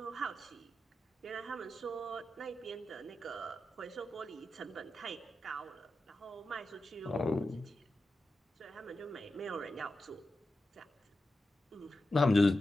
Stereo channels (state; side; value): normal; both; correlation 0.90